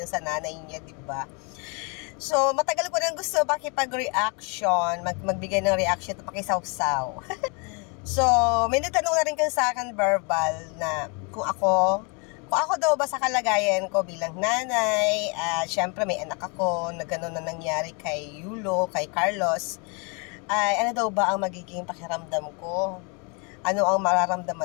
sa nanay niya, diba? So, matagal ko nang gusto makipag-reaction, magbigay ng reaction at pakisaw-saw. So, may nagtanong na rin sa akin verbal na kung ako daw ba sa kalagayan ko bilang nanay, syempre may anak ako na gano'n na nangyari kay Yulo, kay Carlos, ay ano daw ba ang magiging pakiramdam ko? Ano ang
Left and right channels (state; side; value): quieter; right; 33.7 dB